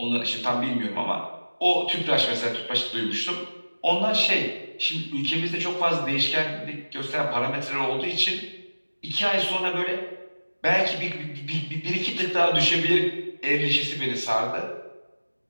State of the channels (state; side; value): inverted; both; correlation -1.00